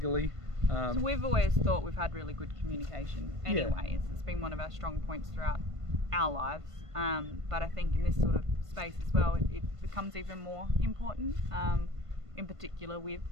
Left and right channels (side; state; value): left; late; 1.5 ms